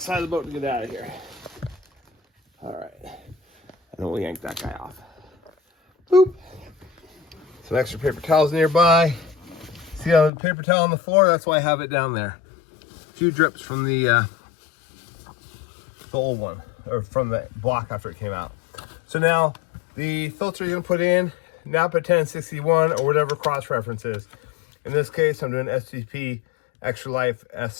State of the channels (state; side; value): drops out; right; at 10.3 s